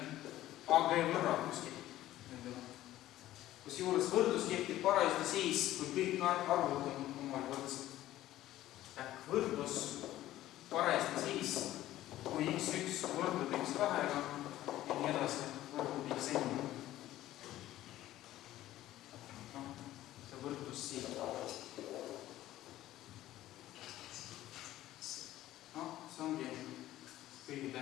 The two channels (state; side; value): quieter; right; 14.5 dB